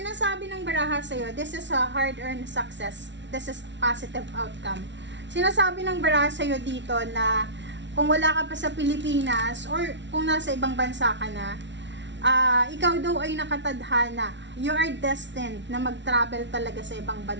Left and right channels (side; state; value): left; late; 0.52 ms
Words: ng baraha sa'yo, this is a hard-earned success. This is positive outcome. Sinasabi ng baraha sa'yo dito na kung wala ka pa sa Pilipinas or kung nasa ibang bansa ka na, ikaw daw ay nakatadhana. You are destined na mag-travel talaga sa ibang